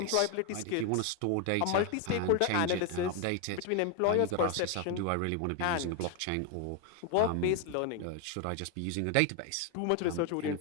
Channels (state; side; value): different; both; correlation 0.01